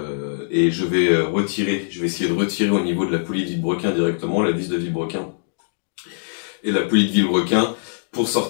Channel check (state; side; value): silent; right; digital silence